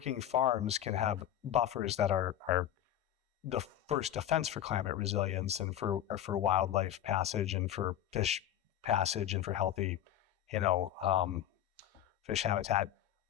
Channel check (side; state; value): right; quieter; 11.4 dB